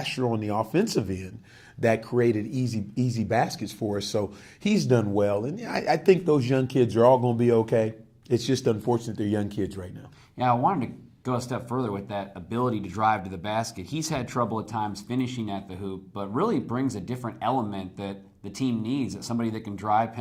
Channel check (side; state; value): both; identical; correlation 1.00